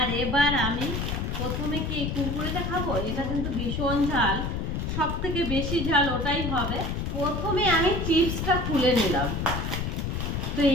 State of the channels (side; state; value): left; noise; rumble, 2 dB below the sound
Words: এবার আমি প্রথমে কি এই কুরকুরেটা খাবো, এটা কিন্তু ভীষণ ঝাল, সব থেকে বেশি ঝাল ওটাই হবে। প্রথমে আমি চিপসটা খুলে নিলাম, তো